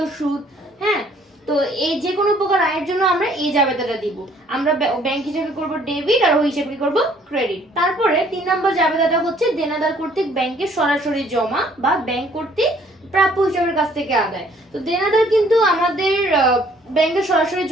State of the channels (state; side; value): normal; both; correlation 0.60